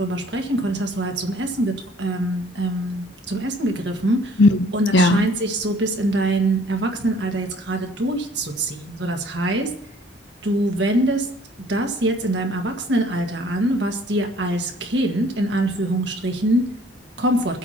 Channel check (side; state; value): both; normal; correlation 0.56